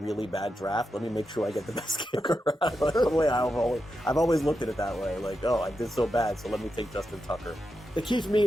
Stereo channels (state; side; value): normal; both; correlation 0.88